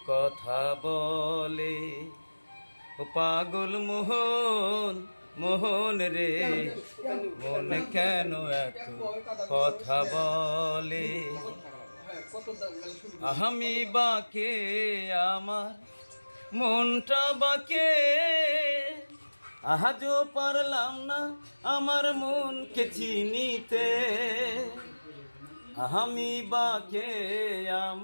কথা বলে, ও পাগল মোহন মোহন রে মন কেন এত কথা বলে। আমি বাকে আমার মনটা বাকে, আজও পারলাম না আমার মনকে চিনিতে। আমি বাকে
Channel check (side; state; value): both; inverted; correlation -1.00